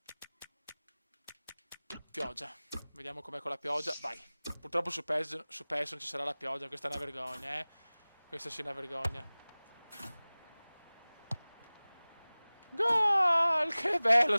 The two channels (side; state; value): both; inverted; correlation -0.99